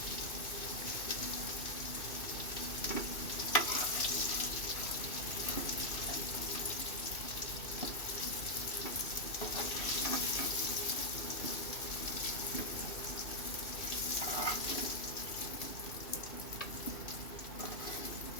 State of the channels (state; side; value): late; right; 2.6 ms